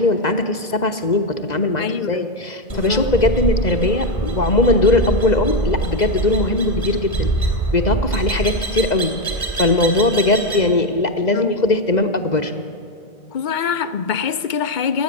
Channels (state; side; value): late; right; 2.0 ms